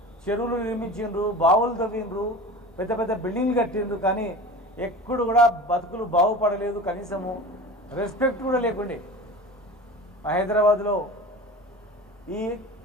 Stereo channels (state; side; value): normal; both; correlation 0.35